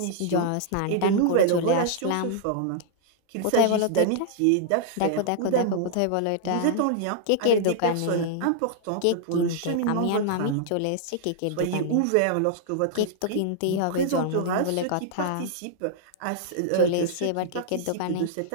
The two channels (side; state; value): both; different; correlation -0.01